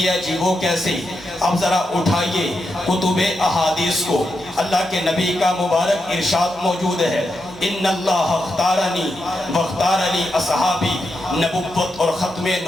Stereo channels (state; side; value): normal; both; correlation 0.86